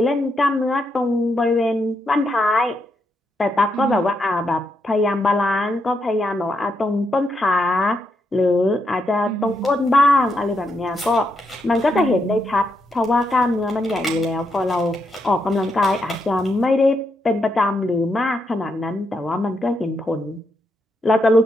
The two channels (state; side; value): normal; both; correlation 0.80